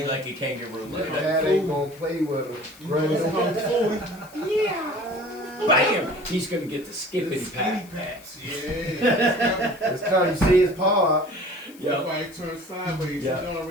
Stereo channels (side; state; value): left; noise; hiss, 24 dB below the sound